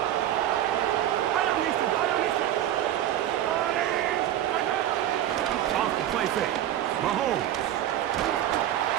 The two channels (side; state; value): left; quieter; 12.0 dB